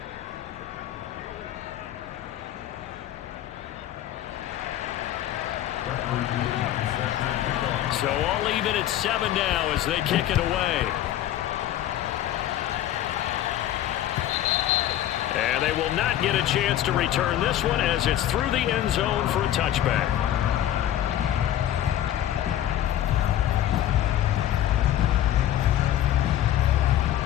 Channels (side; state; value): right; quieter; 12.2 dB